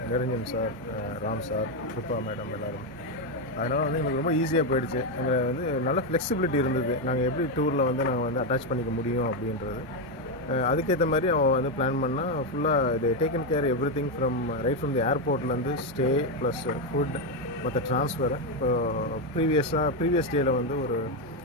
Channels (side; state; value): both; normal; correlation 0.06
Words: Niranjan sir, Ram sir, Kripa madam எல்லாருமே. அதனால் வந்து எங்களுக்கு ரொம்ப ஈஸியாக போயிடுச்சு. எங்களை வந்து நல்ல ஃப்ளெக்சிபிலிட்டி இருந்தது. நாங்கள் எப்படி டூரில் வந்து நாங்கள் வந்து அட்டாச் பண்ணிக்க முடியும் அப்படின்றது. அதுக்கேற்ற மாதிரி அவன் வந்து பிளான் பண்ணால் ஃபுல்லாக இது taken care everything from right from the ஏர்போர்ட்லேருந்து ஸ்டே ப்ளஸ் ஃபுட் மற்ற ட்ரான்ஸ்ஃபரை. இப்போ ப்ரீவியஸ் டேயில் வந்து ஒரு